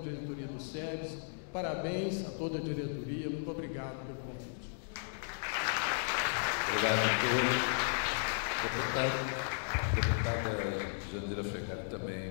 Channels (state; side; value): silent; right; digital silence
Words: diretoria do SEBS, parabéns a toda a diretoria, muito obrigado pelo convite. Obrigado a todos. Deputada Jandira Fegari também